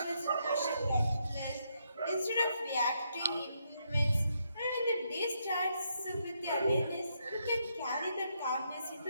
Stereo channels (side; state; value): both; inverted; correlation -0.77